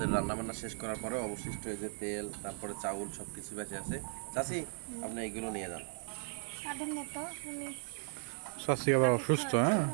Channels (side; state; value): left; silent; 53 dB below the other